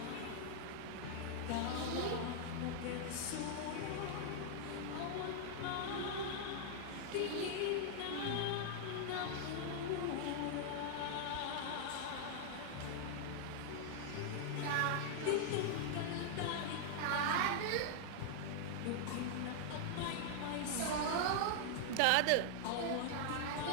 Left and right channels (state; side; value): different; both; correlation 0.00